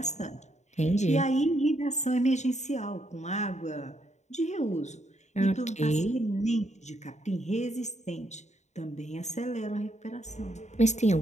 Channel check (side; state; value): right; late; 0.34 ms